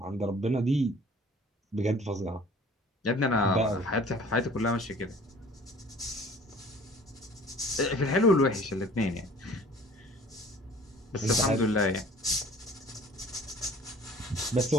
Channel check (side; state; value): both; normal; correlation 0.50